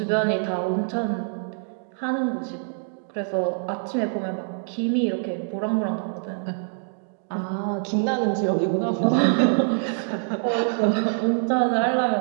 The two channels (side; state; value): left; silent; digital silence